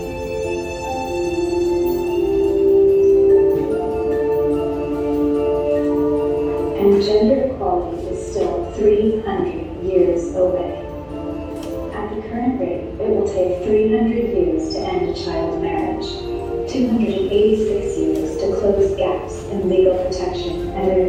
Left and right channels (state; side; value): identical; both; correlation 1.00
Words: and gender equality is still current rate, it will take 300 years to end a child marriage, 286 years to close gaps in legal protection and